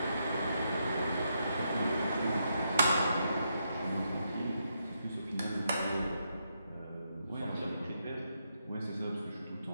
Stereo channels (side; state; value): both; inverted; correlation -0.80